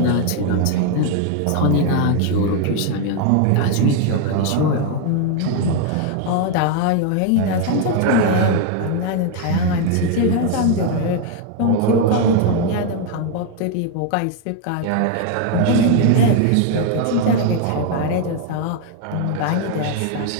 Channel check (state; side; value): different; both; correlation 0.01